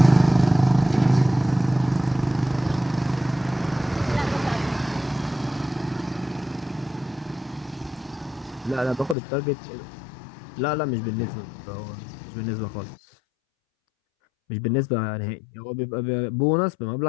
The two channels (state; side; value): drops out; right; at 9.2 s